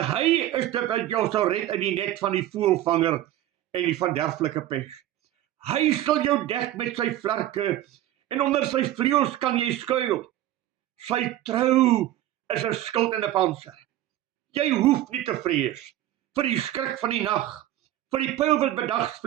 hy is dit wat jou sal red uit die net van die voëlvanger en die verderflike pes. Hy sal jou dek met sy vlerke, en onder sy vleuels kan jy skuil. Sy trou is 'n skild en 'n pantser. Jy hoef nie te vrees vir die skrik van die nag, vir die pyl wat bedags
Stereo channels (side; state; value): left; quieter; 13.5 dB